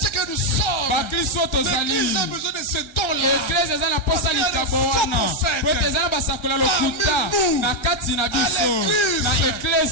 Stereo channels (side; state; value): right; late; 1.4 ms